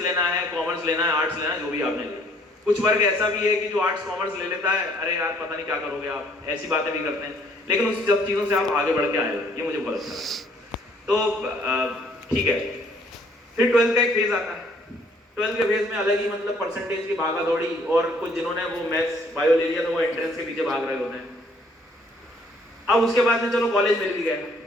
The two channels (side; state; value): both; normal; correlation 0.62